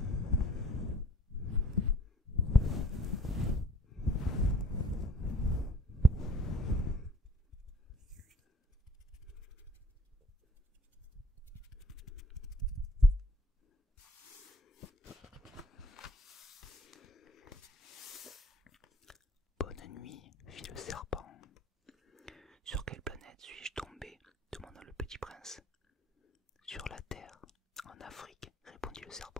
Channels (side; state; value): both; normal; correlation 0.56